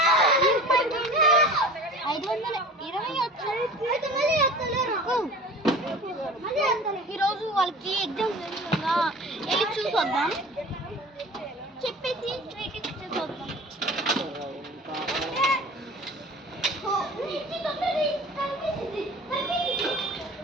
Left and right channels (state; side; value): normal; both; correlation 0.40